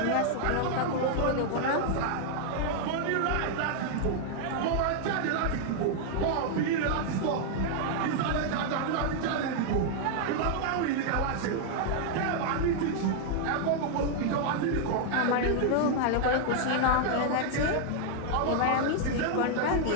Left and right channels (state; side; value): different; both; correlation 0.00